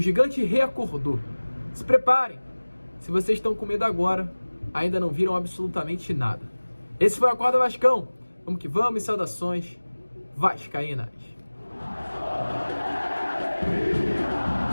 gigante reacordou. Se preparem. Se vocês estão com medo agora, ainda não viram absolutamente nada. Esse foi o Acorda Vascão. Vamos que vamos e saudações vascaínas.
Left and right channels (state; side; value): inverted; both; correlation -1.00